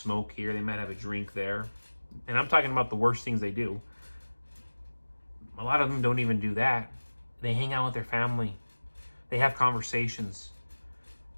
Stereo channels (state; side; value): inverted; both; correlation -1.00